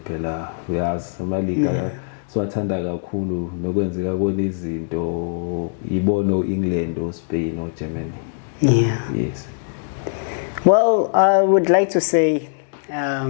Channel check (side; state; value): right; silent; digital silence